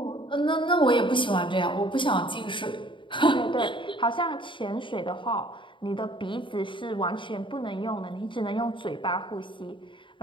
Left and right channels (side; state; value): right; late; 0.24 ms